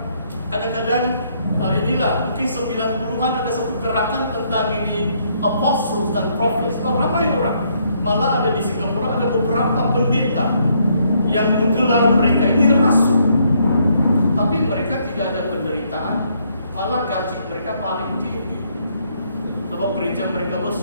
kadang-kadang inilah mungkin 90-an ada satu gerakan tentang ini apostles dan prophets. Ramai orang, malah ada di Singapura ada beberapa pendeta yang menggelar mereka ini rasul, tapi mereka tidak ada penderitaan, malah gaji mereka paling tinggi. Sebab gereja mereka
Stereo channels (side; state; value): both; inverted; correlation -0.70